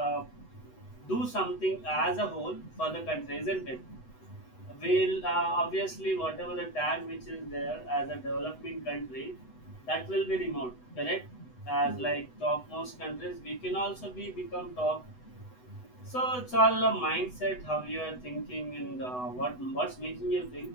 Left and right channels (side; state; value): right; late; 8.0 ms